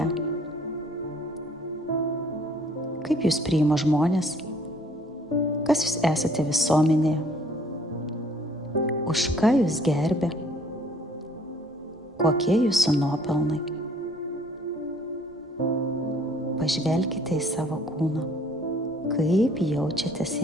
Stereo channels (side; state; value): both; normal; correlation 0.59